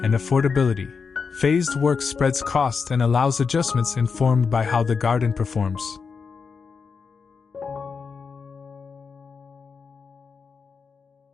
affordability. Phased work spreads cost and allows adjustments informed by how the garden performs.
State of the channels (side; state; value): right; quieter; 5.4 dB